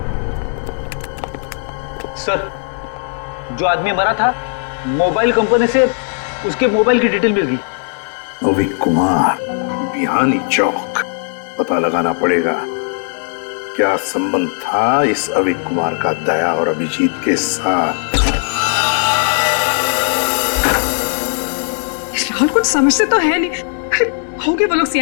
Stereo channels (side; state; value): right; silent; digital silence